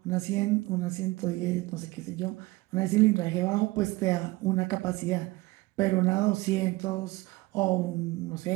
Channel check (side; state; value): left; quieter; 21.2 dB